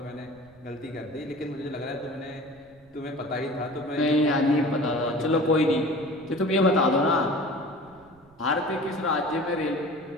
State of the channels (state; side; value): noise; right; rumble, 29 dB below the sound